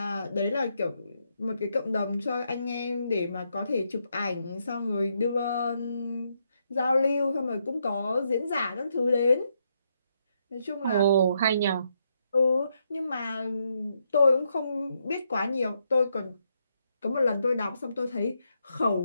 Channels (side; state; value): both; inverted; correlation -0.78